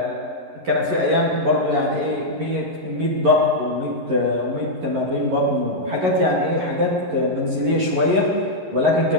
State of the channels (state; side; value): late; left; 11 ms